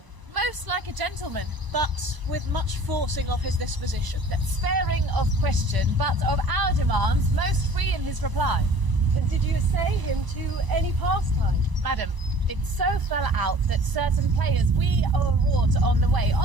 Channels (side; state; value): left; late; 1.0 ms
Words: Most like a gentleman, But with much forcing of his disposition. sparing of question, but of our demands most free in his reply. And did you essay him to any pastime? Madam, it so fell out that certain players we o'erwrought on the way,